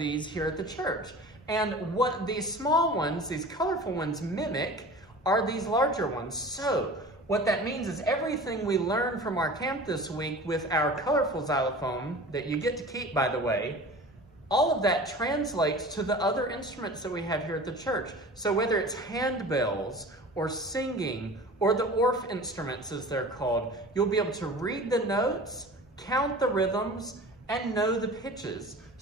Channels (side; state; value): both; normal; correlation 0.39